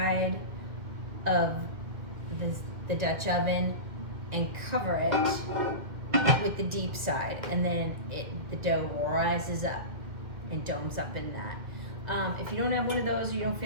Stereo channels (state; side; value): late; left; 2.1 ms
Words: of the Dutch oven and cover it with the deep side, and then the dough rises up and domes up in that. If you don't have one of those, you don't